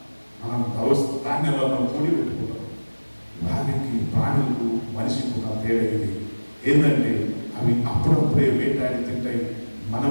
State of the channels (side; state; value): both; inverted; correlation -1.00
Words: మనం ధాన్యాలను కూడి పెట్టుకుంటాం. వారికి ప్రాణులకు మనిషికి ఉన్న తేడా ఇది ఏంటంటే అవి అప్పుడప్పుడే వేటాడి తింటాయి.